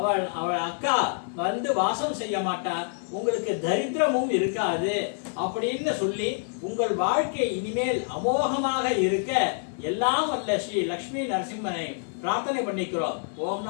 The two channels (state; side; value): silent; right; 60 dB below the other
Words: அக்கா வாசம் செய்ய மாட்டா. உங்களுக்கு தரித்திரமும் இருக்காது அப்படின்னு சொல்லி உங்கள் வாழ்க்கை இனிமேல் அமோகமாக இருக்க எல்லாம் வல்ல ஸ்ரீ லக்ஷ்மி நரசிம்மனை பிரார்த்தனை பண்ணிக்கிறோம். ஓம்